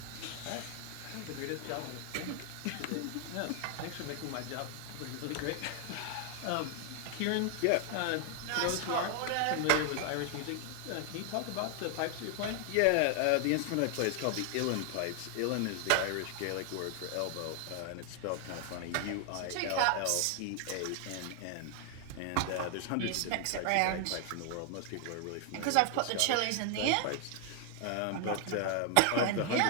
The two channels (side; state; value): both; different; correlation 0.00